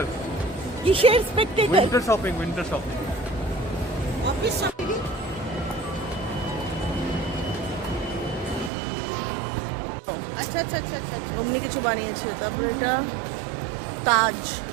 কিসের Spectator? Winter shopping, winter shopping. Office shopping. আচ্ছা আচ্ছা আচ্ছা আচ্ছা আচ্ছা। অমনি কিছু বানিয়েছে। তারপরে এটা তাজ।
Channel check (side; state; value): left; drops out; at 8.7 s